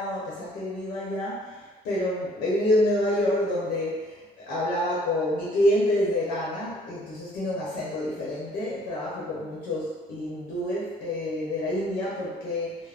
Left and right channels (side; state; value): both; normal; correlation 0.58